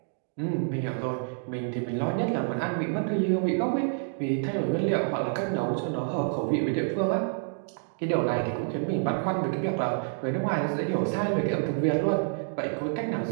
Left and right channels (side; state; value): left; silent; 59 dB below the other